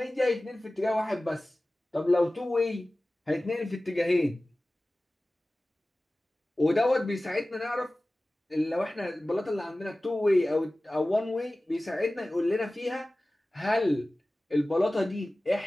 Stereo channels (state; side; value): normal; both; correlation 0.97